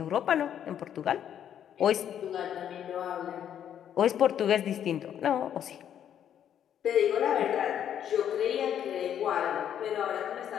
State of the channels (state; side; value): quieter; right; 9.7 dB